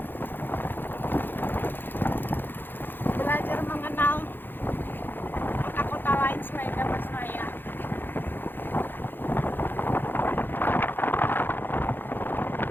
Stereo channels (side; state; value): right; late; 0.096 ms